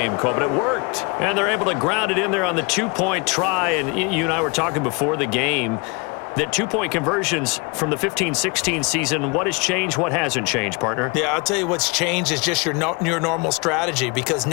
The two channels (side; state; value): right; quieter; 30.0 dB